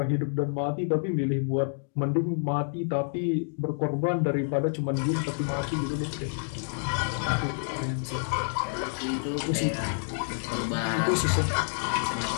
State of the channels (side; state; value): right; silent; digital silence